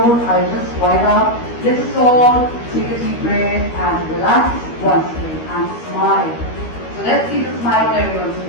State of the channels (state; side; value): late; right; 13 ms